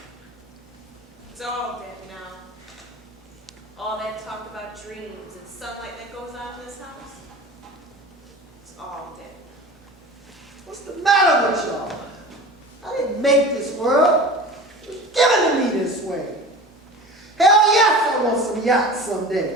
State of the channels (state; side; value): normal; both; correlation 0.35